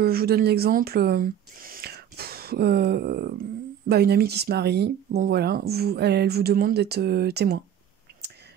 vous donne l'exemple... une amie qui se marie, bon voilà, elle vous demande d'être témoin.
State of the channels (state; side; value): quieter; left; 9.8 dB